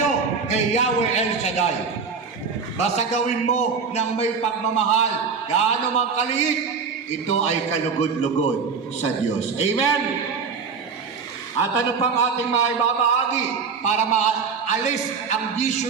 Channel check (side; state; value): left; quieter; 5.5 dB